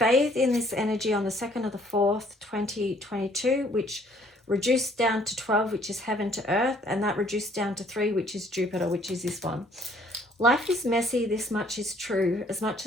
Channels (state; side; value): normal; both; correlation 0.61